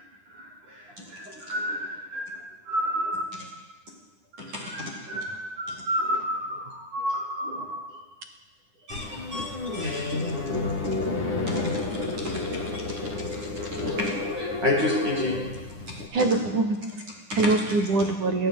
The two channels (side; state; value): left; late; 9.9 ms